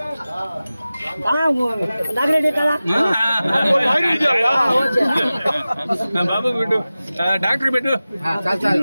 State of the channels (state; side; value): inverted; both; correlation -0.96